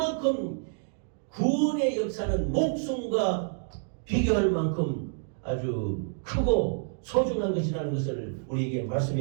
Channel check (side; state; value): left; silent; digital silence